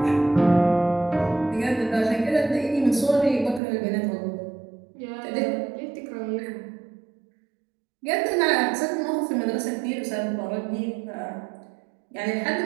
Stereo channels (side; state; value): left; drops out; at 3.6 s